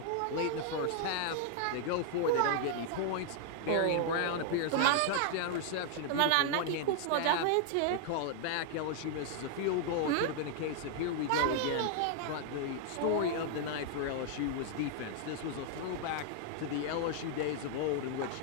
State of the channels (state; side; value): different; both; correlation 0.00